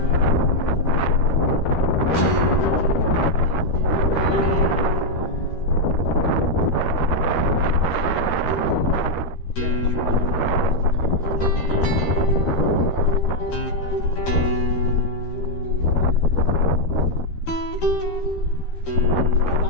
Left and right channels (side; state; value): right; late; 13 ms